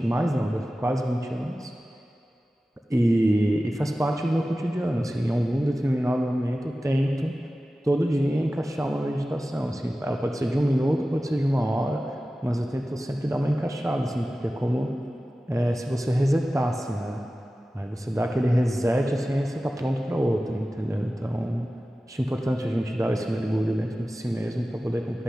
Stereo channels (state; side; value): normal; both; correlation 0.95